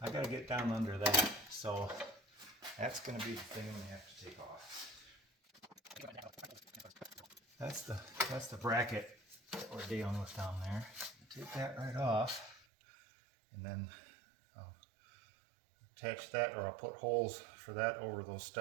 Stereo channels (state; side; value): drops out; left; at 12.6 s